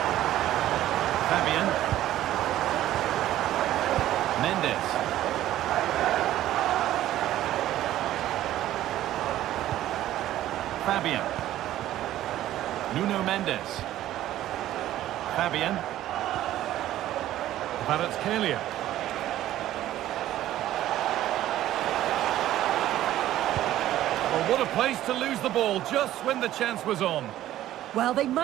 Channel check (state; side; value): quieter; left; 13.5 dB